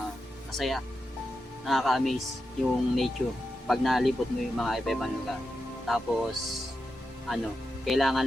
Masaya. Nakaka-amaze yung nature pag nalipot mo yung mga iba-ibang lugar. Tapos,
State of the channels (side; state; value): both; normal; correlation 0.88